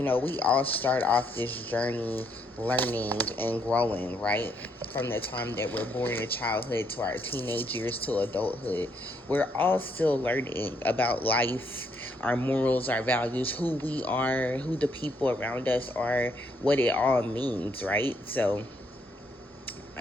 all start off this journey learning and growing, right? From the time that we're born in childhood to our teenage years to adulthood, we're all still learning about life, our morals, our values, who we are, who the people around us are, what it all means, right? So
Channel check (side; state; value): both; normal; correlation 0.72